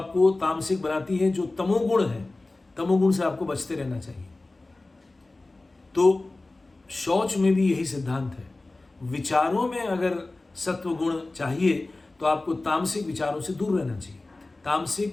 तामसिक बनाती है, जो तमोगुण है, तमोगुण से आपको बचते रहना चाहिए। तो शौच में भी यही सिद्धांत है। विचारों में अगर सत्वगुण चाहिए तो आपको तामसिक विचारों से दूर रहना चाहिए,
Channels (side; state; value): right; quieter; 3.1 dB